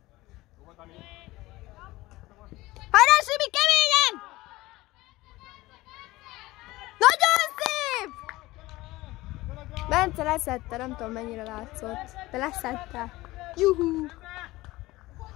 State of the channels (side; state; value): right; quieter; 18.9 dB